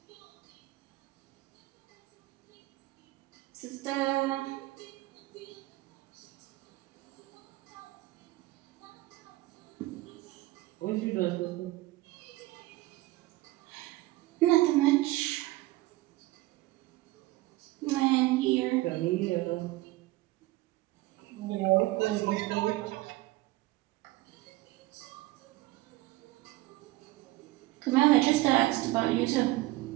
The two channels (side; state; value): left; quieter; 18.9 dB